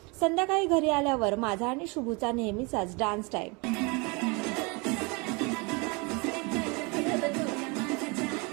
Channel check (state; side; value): quieter; left; 29.0 dB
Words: संध्याकाळी घरी आल्यावर माझा आणि शुभूचा नेहमीचाच डान्स टाइम